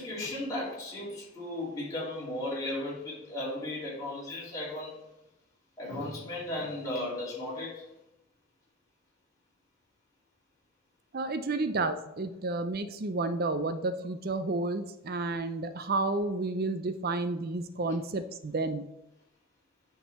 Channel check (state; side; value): normal; both; correlation 0.19